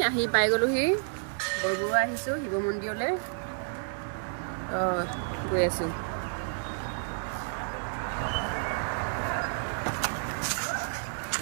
আহি পাই গ'লোহি, বৰবৰুৱা আহিছোঁ শিৱ মন্দিৰলৈ গৈ আছোঁ।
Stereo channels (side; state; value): left; silent; 58 dB below the other